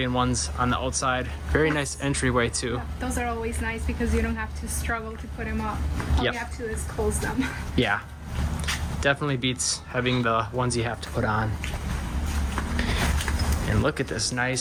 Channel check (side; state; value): both; identical; correlation 1.00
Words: ones on the outside. Very nice entryway too. Yeah, those are always nice because you don't have to struggle to put them up. All you have to do is close them. Yeah, definitely beats having the ones you have to put on. And look at this